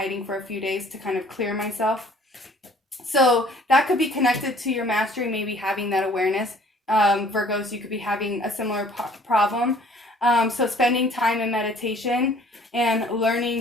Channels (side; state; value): both; normal; correlation 0.55